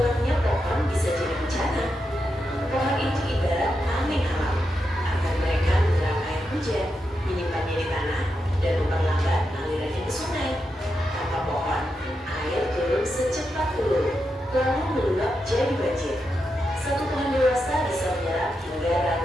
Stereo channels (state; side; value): normal; both; correlation 0.86